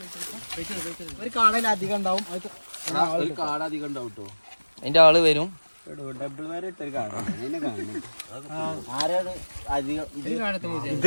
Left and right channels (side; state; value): both; inverted; correlation -1.00